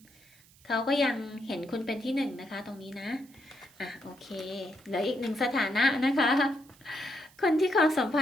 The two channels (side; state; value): right; noise; hiss, 27 dB below the sound